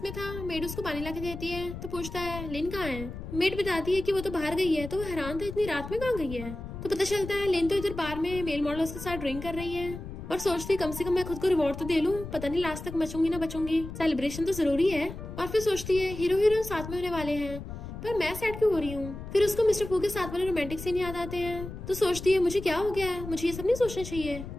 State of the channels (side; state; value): left; noise; rumble, 10 dB below the sound